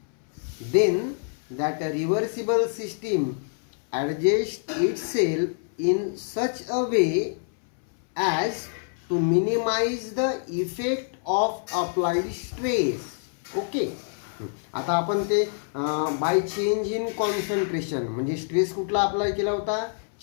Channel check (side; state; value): right; silent; 61 dB below the other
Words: then that reversible system adjusts itself in such a way as to minimize the effect of applied stress. Okay, आता आपण ते by change in concentration म्हणजे stress कुठला apply केला होता?